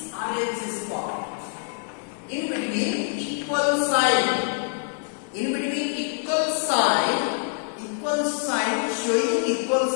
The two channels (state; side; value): silent; right; 55 dB below the other